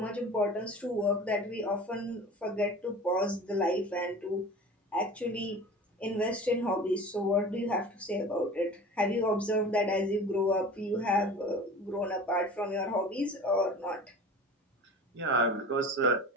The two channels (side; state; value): both; normal; correlation 0.38